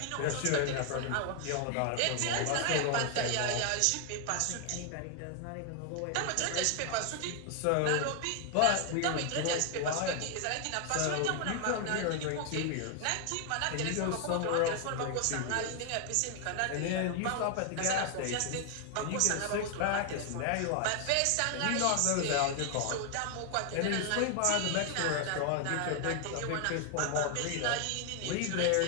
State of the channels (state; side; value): different; both; correlation 0.00